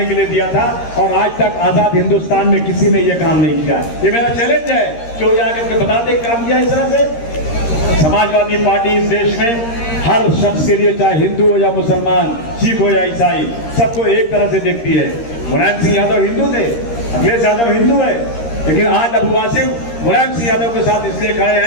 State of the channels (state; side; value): late; right; 13 ms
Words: के लिए दिया था। और आज तक आजाद हिंदुस्तान में किसी ने यह काम नहीं किया। ये मेरा चैलेंज है कि वो जाकर के बता दे काम किया इस तरह से। समाजवादी पार्टी इस देश में हर शख्स के लिए, चाहे हिंदू हो या मुसलमान, सिख हो या ईसाई, सबको एक तरह से देखती है। मुलायम सिंह यादव हिंदू थे, अखिलेश यादव हिंदू है, लेकिन आज अबू वासिम मुलायम सिंह यादव के साथ इसलिए खड़े